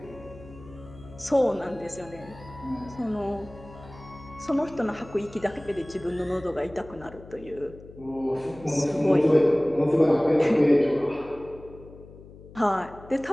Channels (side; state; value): left; noise; hum, 19 dB below the sound